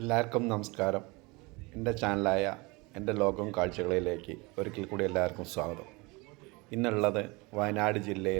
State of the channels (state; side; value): quieter; left; 25.8 dB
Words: നമസ്കാരം. എൻ്റെ ചാനലായ എൻ്റെ ലോകം കാഴ്ചകളിലേക്ക് ഒരിക്കൽ കൂടി എല്ലാവർക്കും സ്വാഗതം. ഇന്നുള്ളത് വയനാട്